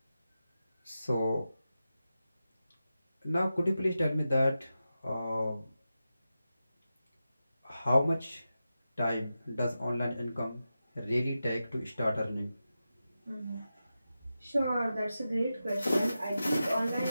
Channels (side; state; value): both; inverted; correlation -0.91